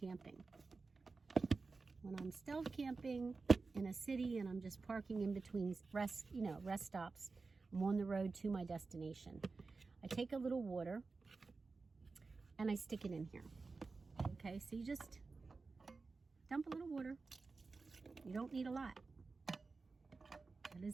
When I'm stealth camping in a city and I'm just parking in between rest stops, I'm on the road to my destination. I take a little water and I stick it in here. Okay, so you just dump a little water. You don't need a lot. That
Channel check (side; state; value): left; quieter; 4.1 dB